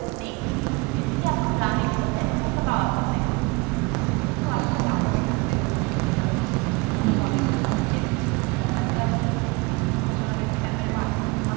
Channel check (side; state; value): left; quieter; 26.0 dB